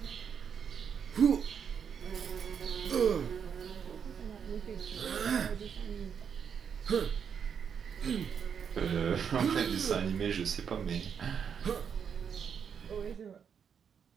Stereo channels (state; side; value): quieter; left; 7.3 dB